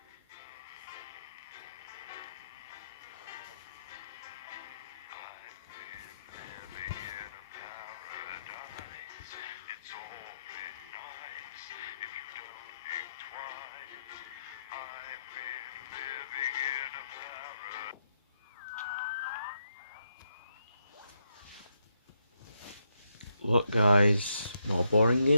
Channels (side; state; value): both; inverted; correlation -0.79